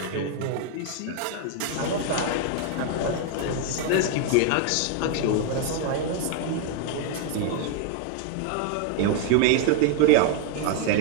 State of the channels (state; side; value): different; both; correlation 0.00